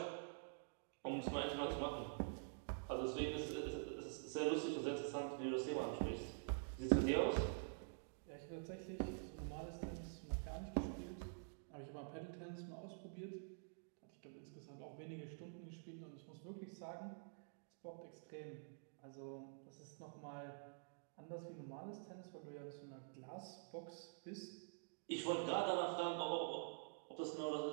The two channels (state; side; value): silent; left; digital silence